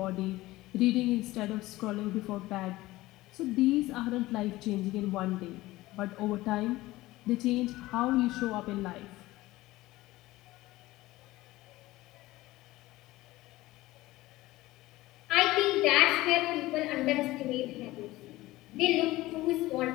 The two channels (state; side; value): quieter; right; 18.1 dB